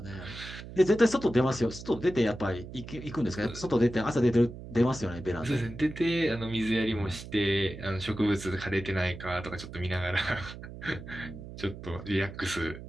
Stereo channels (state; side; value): noise; right; hum, 12 dB below the sound